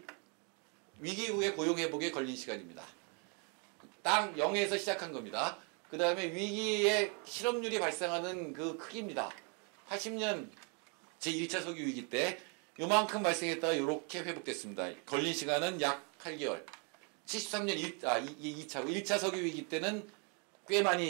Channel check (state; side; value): quieter; left; 36.6 dB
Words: 위기 후에 고용 회복에 걸린 시간입니다. 땅 0에서 시작한 겁니다. 그 다음에 위기의 실업률이 발생하는 그 크기입니다. 80년 제1차 석유 위기 때 요만큼 발생했다가 이렇게 회복됐습니다. 걸린 시간은 약 8개월. 73년 1차 석유 위기 때는 꽤